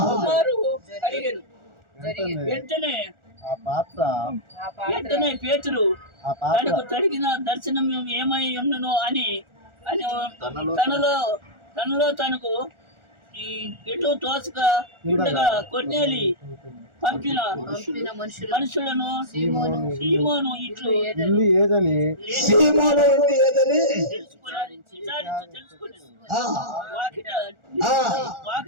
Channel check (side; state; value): left; late; 1.4 ms